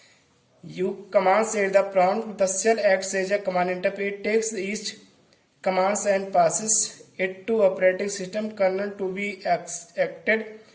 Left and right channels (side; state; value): both; identical; correlation 1.00